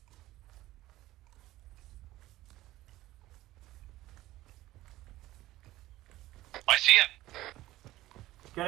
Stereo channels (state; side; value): quieter; left; 16.4 dB